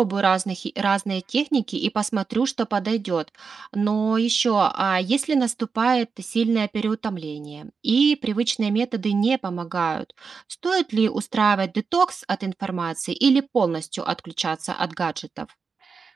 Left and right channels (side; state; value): left; quieter; 5.3 dB